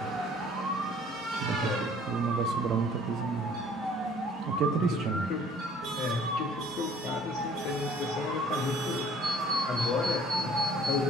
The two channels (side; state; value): both; normal; correlation 0.54